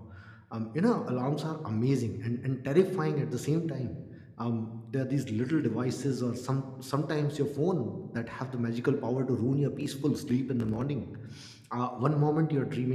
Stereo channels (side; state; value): both; identical; correlation 1.00